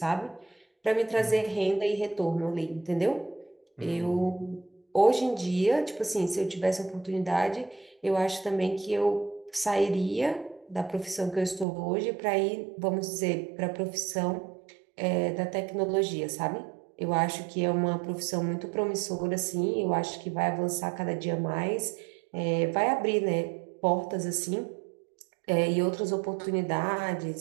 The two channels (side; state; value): left; drops out; at 11.7 s